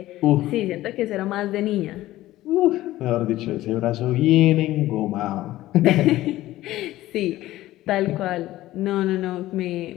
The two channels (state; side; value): quieter; right; 15.7 dB